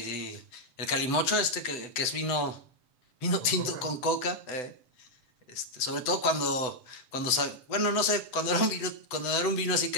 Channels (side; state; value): right; late; 7.9 ms